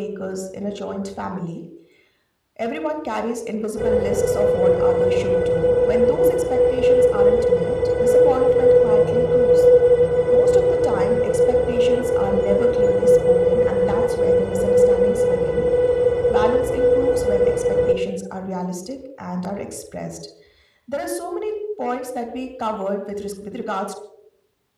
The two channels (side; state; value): both; identical; correlation 1.00